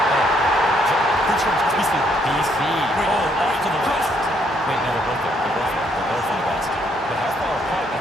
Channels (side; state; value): both; normal; correlation 0.70